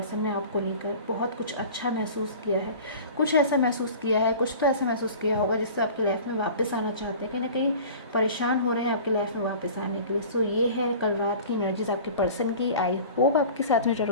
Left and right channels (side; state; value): both; inverted; correlation -0.41